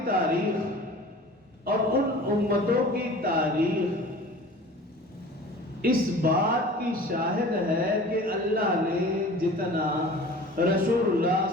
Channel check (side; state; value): both; normal; correlation 0.42